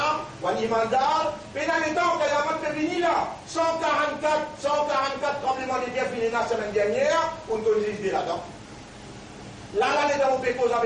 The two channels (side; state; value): both; identical; correlation 1.00